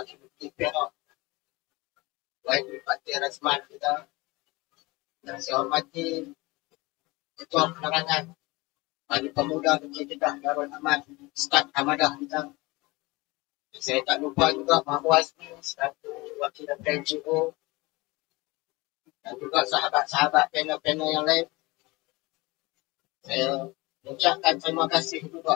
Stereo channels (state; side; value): quieter; right; 23.1 dB